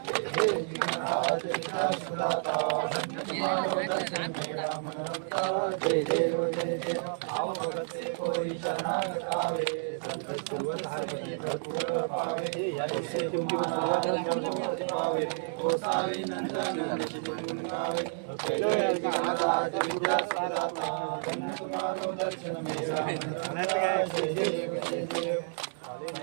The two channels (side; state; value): left; silent; digital silence